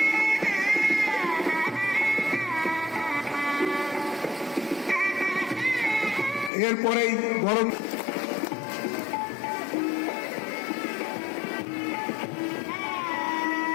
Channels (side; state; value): right; drops out; at 6.5 s